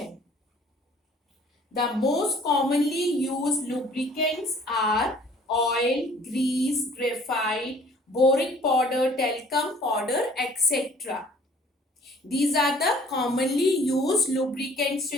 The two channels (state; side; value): normal; both; correlation 0.54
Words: The most commonly used lubricants are oil, grease, graphite, boric powder, talcum powder, etc. These are the commonly used lubricants,